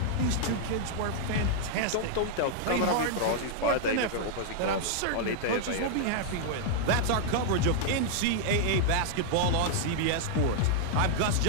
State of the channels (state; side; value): different; both; correlation -0.01